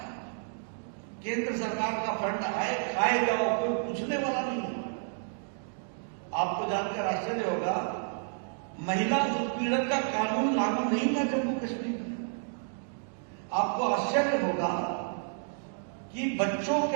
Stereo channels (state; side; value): silent; left; 57 dB below the other